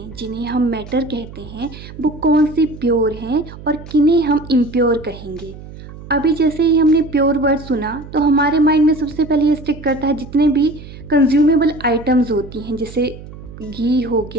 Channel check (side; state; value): right; noise; hum, 15 dB below the sound